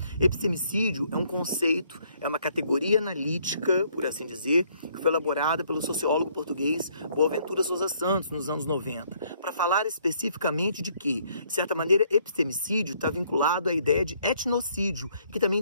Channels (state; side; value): inverted; both; correlation -0.66